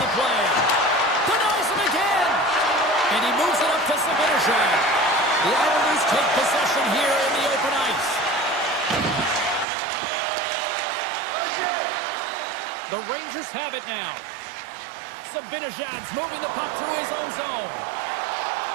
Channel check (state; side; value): drops out; left; at 9.7 s